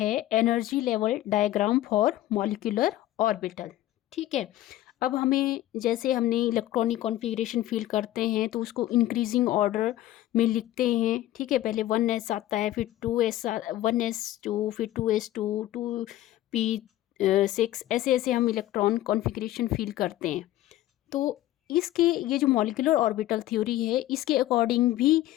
energy level diagram for molecular orbital. ठीक है। अब हमें जैसे हमने इलेक्ट्रॉनिक कॉन्फ़िगरेशन फील करते हैं तो उसको इंक्रीजिंग ऑर्डर में लिखते हैं। ठीक है, पहले 1s आता है, फिर 2s, 1s2, फिर 2s2, 2p6, ऐसे ऐसे हम इलेक्ट्रॉन कॉन्फ़िगरेशन फील करते हैं। तो इसके ये जो मॉलिक्यूलर ऑर्बिटल थ्योरी है, इसके अकॉर्डिंग भी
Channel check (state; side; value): quieter; right; 14.5 dB